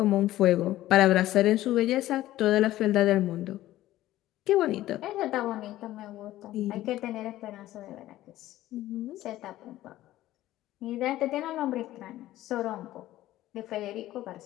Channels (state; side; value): quieter; right; 14.9 dB